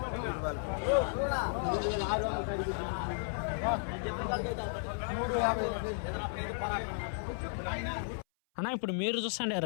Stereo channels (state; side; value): silent; right; 55 dB below the other